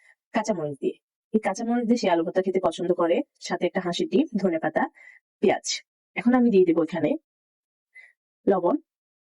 কাঁচামরিচ দিয়ে। এই কাঁচামরিচ দিয়ে সে আলু ভর্তা খেতে পছন্দ করে, সাথে একটা হাঁসের ডিম, ধনেপাতা, পেঁয়াজ। এখন আমি দিয়ে দেবো এখানে লবণ।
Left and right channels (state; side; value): identical; both; correlation 1.00